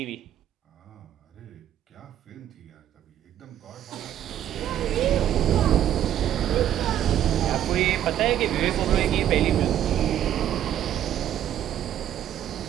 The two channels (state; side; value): quieter; left; 11.1 dB